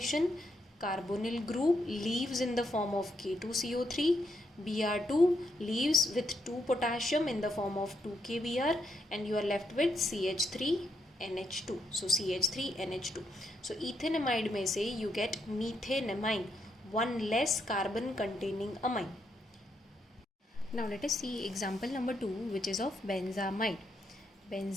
Carbonyl group leaves in the form of K2CO3. Br2 leaves with 2 potassium in the form of 2KBr, and you are left with CH3NH2. So CH3NH2. So ethanamide में से you get methanamine, one less carbon containing amine. Now let us see example number 2, which is of benzamide.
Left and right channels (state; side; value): normal; both; correlation 0.78